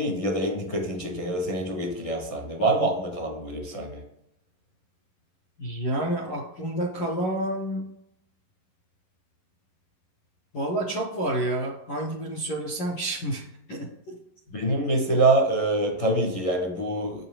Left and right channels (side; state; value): right; late; 11 ms